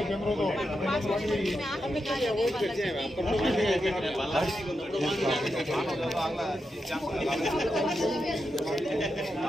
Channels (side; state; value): both; normal; correlation 0.87